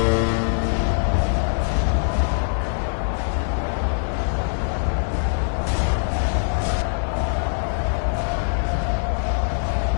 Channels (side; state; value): right; silent; digital silence